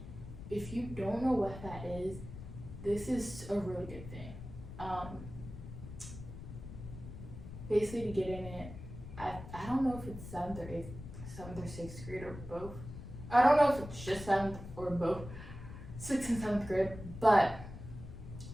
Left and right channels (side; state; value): left; noise; rumble, 11 dB below the sound